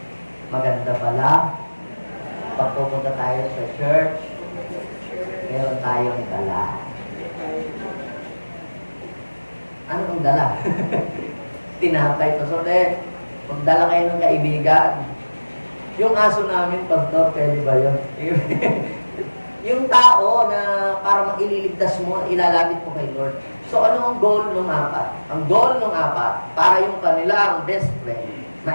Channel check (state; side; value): inverted; both; correlation -1.00